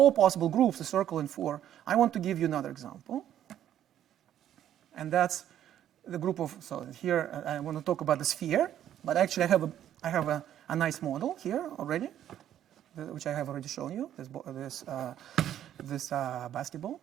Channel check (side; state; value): left; quieter; 11.0 dB